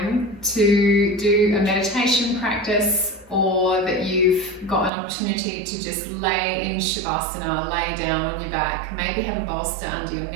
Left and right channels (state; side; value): drops out; left; at 4.9 s